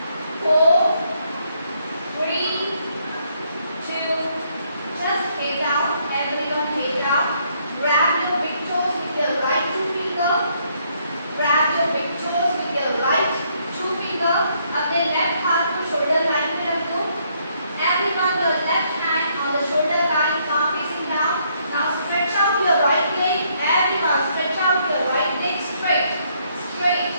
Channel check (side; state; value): both; inverted; correlation -0.71